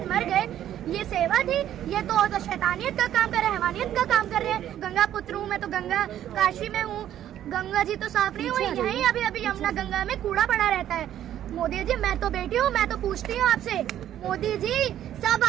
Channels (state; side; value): quieter; left; 11.4 dB